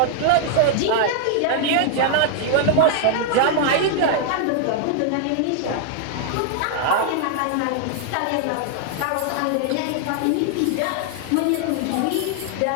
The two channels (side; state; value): both; different; correlation -0.01